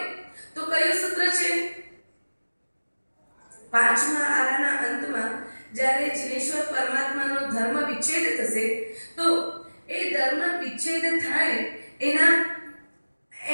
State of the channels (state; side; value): inverted; both; correlation -1.00